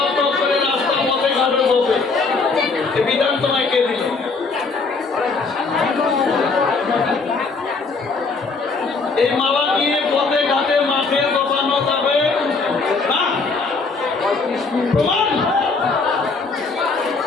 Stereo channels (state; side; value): quieter; right; 4.2 dB